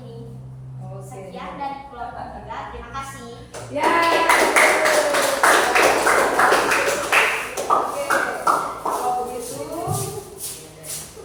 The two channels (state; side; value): identical; both; correlation 1.00